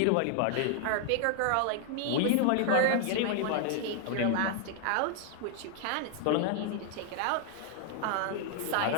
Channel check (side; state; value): both; different; correlation 0.00